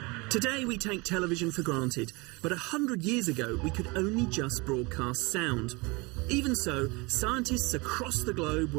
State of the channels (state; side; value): quieter; left; 26.4 dB